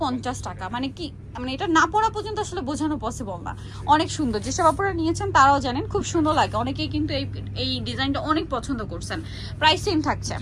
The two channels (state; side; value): identical; both; correlation 1.00